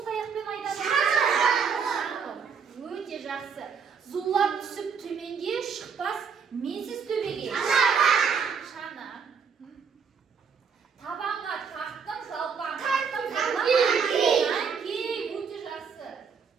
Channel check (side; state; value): left; quieter; 6.2 dB